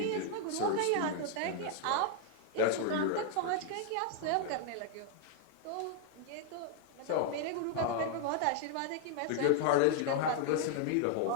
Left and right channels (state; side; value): different; both; correlation 0.00